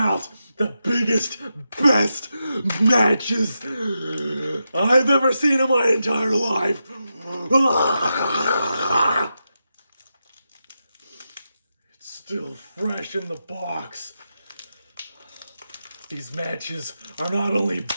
the biggest, best matches I've ever seen in my entire life. It's still fresh in the box. These matches are not only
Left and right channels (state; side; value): inverted; both; correlation -0.88